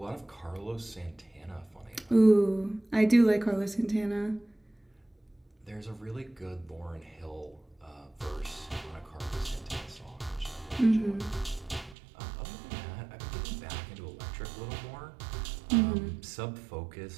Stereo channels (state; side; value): drops out; left; at 12.0 s